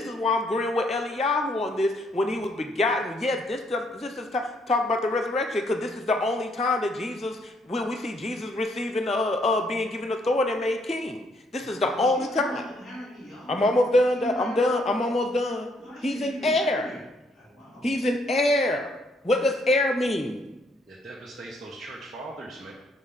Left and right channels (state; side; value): normal; both; correlation 0.70